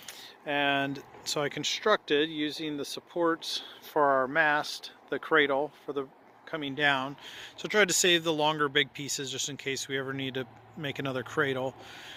And so I constructed, using the supports for our mast, the cradle for the coming down. So I tried to save the longer big pieces just in case we ever need to make another cradle,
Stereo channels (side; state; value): both; identical; correlation 1.00